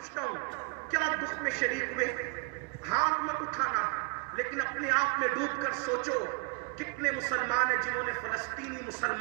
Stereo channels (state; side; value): quieter; left; 31.1 dB